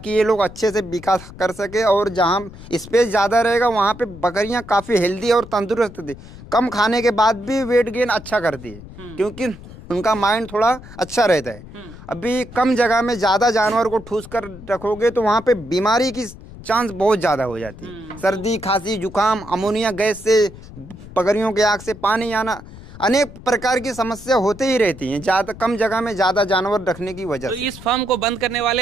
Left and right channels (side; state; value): left; noise; rumble, 16 dB below the sound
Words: ये लोग अच्छे से विकास कर सके और जहाँ स्पेस ज़्यादा रहेगा वहाँ पे बकरियाँ काफ़ी हेल्दी और तंदुरुस्त थी, कम खाने के बाद भी वेट गेन अच्छा करती है क्योंकि उनका माइंड थोड़ा अच्छा रहता है। अभी कम जगह में ज़्यादा जानवर को ठूस कर रखोगे तो वहाँ पे बीमारी की चांस बहुत ज़्यादा हो जाती है। सर्दी, खांसी, जुकाम, अमोनिया गैस से, बकरियों के आँख से पानी आना, अनेक प्रकार की समस्या होते ही रहती हैं ज़्यादा कम जगह में ज़्यादा जानवर रखने की वजह से। तो इस फार्म को बंद करने वाले